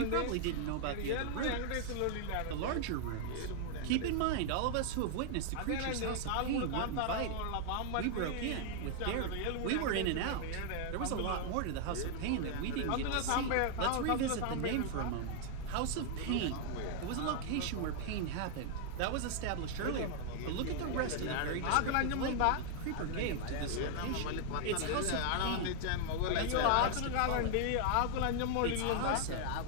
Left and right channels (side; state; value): both; different; correlation 0.00